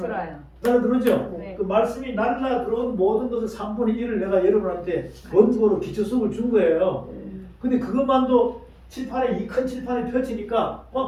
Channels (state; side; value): identical; both; correlation 1.00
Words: 날라 들어오죠? 네. 그 말씀이 날라 들어온 모든 것을 3분의 1을 내가 여러분한테 원고로 기초수업을 준 거예요. 근데 그것만도 칠판에 이 큰 칠판에 펼치니까